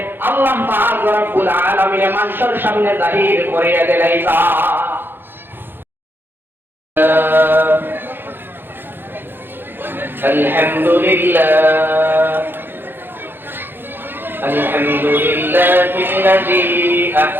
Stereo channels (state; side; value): late; left; 0.10 ms